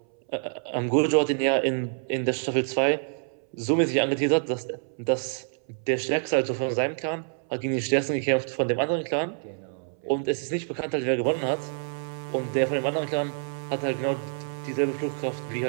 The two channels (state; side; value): silent; left; 60 dB below the other